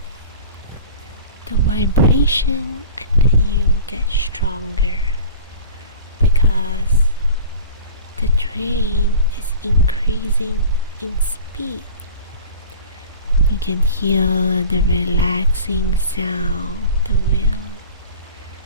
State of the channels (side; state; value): both; inverted; correlation -0.39